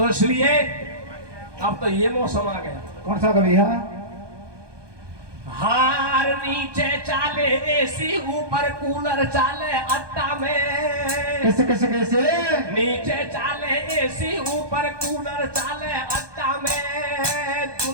इसलिए अब तो ये मौसम आ गया। कौन सा कभी है? हार नीचे चाले एसी ऊपर कूलर चाले अट्टा में। कैसे कैसे कैसे? नीचे चाले एसी ऊपर कूलर चाले अट्टा में।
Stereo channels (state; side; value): late; left; 1.2 ms